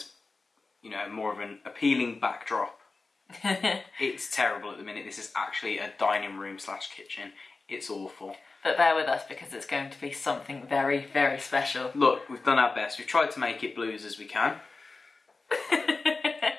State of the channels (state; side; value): quieter; right; 3.8 dB